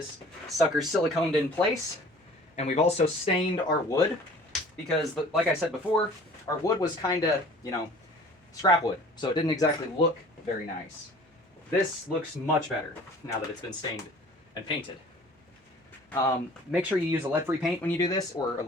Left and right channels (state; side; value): normal; both; correlation 0.48